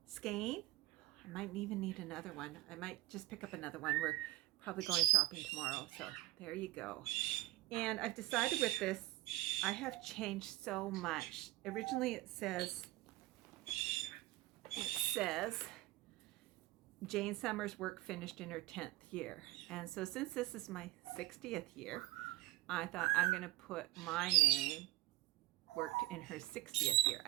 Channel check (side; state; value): left; quieter; 17.4 dB